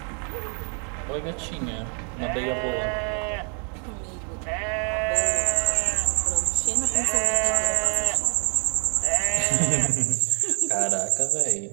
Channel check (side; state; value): left; quieter; 39.7 dB